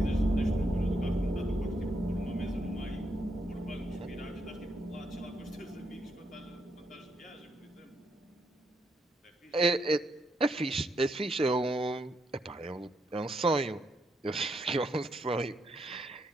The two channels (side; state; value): both; normal; correlation 0.78